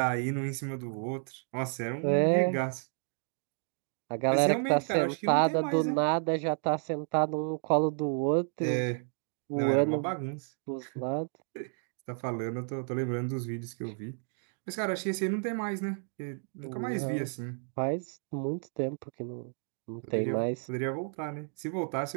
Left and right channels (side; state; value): left; silent; 57 dB below the other